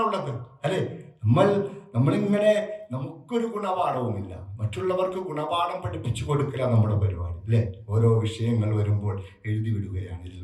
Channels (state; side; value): identical; both; correlation 1.00